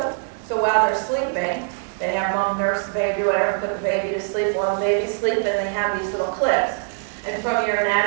So while they're sleeping, they have mom nurse the baby, whatever, put the baby to sleep. While the baby's sleeping, they have these little clips. And from your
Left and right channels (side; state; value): left; silent; digital silence